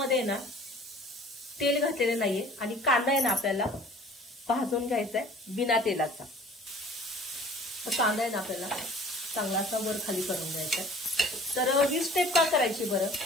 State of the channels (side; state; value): both; normal; correlation 0.49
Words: ना तेल घातलेले नाहीये आणि कांदा आहे ना आपल्याला भाजून घ्यायचा आहे बिना तेलाचा। तर कांदा आहे ना आपल्याला चांगला असा वर खाली करून घ्यायचा आहे। तर ही स्टेप का करायची बरं,